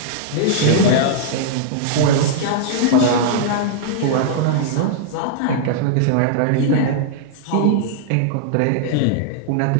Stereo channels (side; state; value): both; different; correlation -0.02